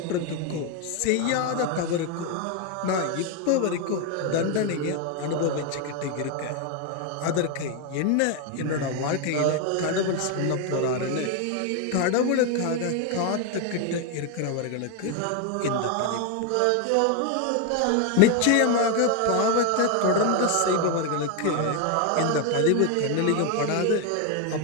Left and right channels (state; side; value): different; both; correlation 0.01